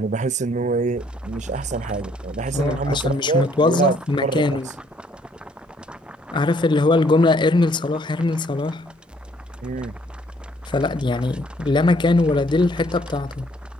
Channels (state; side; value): normal; both; correlation 0.64